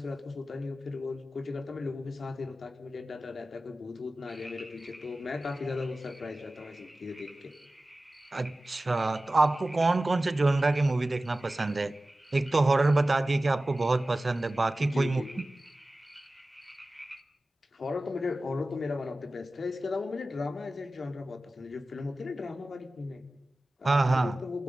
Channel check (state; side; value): normal; both; correlation 0.96